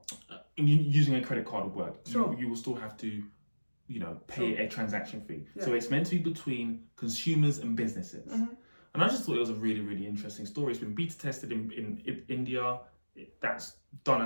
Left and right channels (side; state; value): both; inverted; correlation -1.00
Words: using a credit card would work. Sure. You will still have to, pay a transaction fee. Yeah. So it's meant to be between consumers and businesses. And I just thought it was a really, really interesting story. It's been beta tested in India. That's done